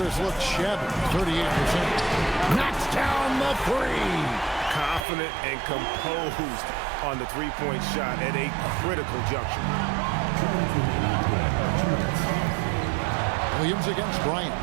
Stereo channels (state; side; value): drops out; left; at 5.1 s